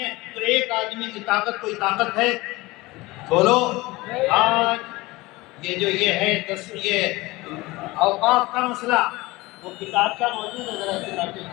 ہے تو ایک آدمی کی طاقت کوئی طاقت ہے؟ بولو۔ آج یہ ہے یہ اوقاف کا مسئلہ، وہ کتاب کا موجود ہے، ذرا کتاب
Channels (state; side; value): quieter; right; 21.2 dB